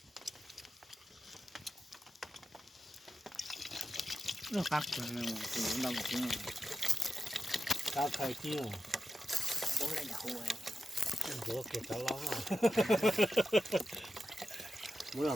nó cắt rồi từ lòng chứ cao khai kia bố lại đậu rồi bữa kẹt cho lắm à bố là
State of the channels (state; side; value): normal; both; correlation 0.90